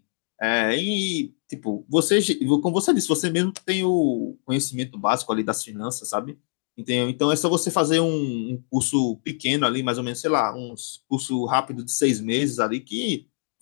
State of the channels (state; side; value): silent; right; digital silence